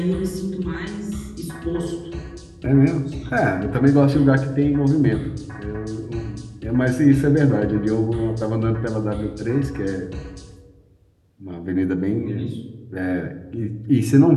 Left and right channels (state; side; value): identical; both; correlation 1.00